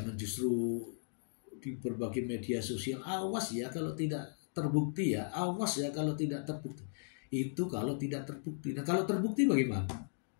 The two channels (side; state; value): right; silent; digital silence